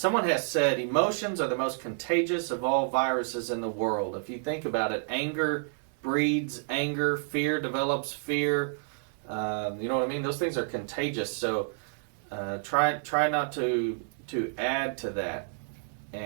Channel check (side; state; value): left; silent; 55 dB below the other